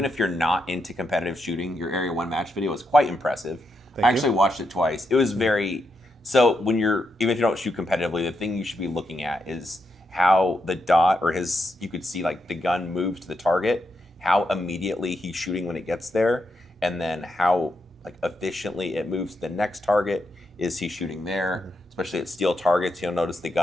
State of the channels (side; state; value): both; normal; correlation 0.83